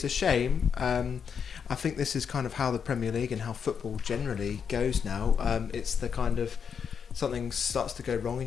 a shame. I think this is kind of how the Premier League and how football generally goes now. It's the kind of something starts to go wrong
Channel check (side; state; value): right; quieter; 6.9 dB